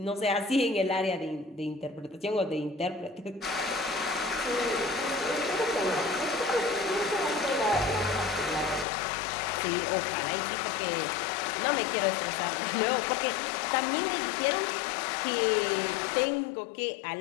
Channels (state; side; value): drops out; right; at 8.8 s